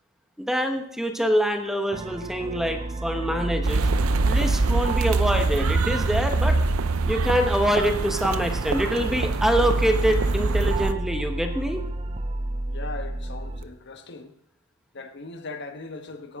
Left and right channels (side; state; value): both; normal; correlation 0.80